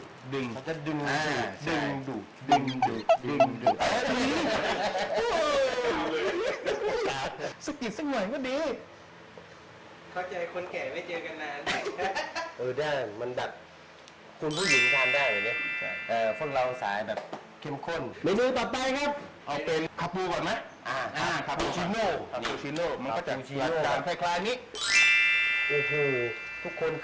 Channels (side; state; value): both; identical; correlation 1.00